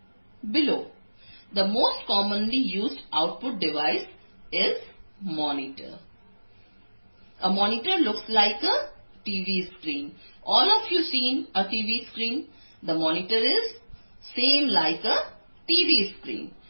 below. The most commonly used output device is monitor. A monitor looks like a TV screen. All of you seen a TV screen? The monitor is same like a TV screen.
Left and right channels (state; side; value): inverted; both; correlation -1.00